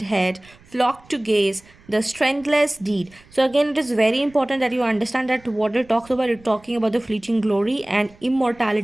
head flocked to gaze the strengthless deed. So again, it is very important that you understand that what it talks about, it talking about the fleeting glory and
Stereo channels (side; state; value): right; noise; rumble, 27 dB below the sound